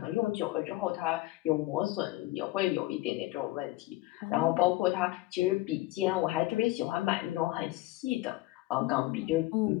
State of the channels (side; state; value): right; quieter; 18.9 dB